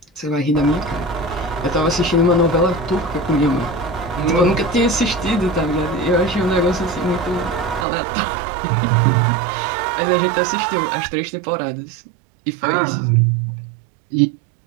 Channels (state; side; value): drops out; left; at 7.9 s